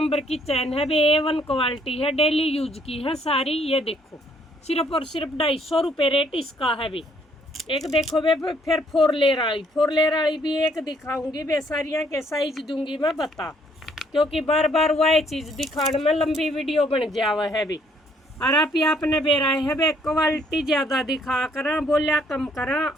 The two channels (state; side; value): normal; both; correlation 0.66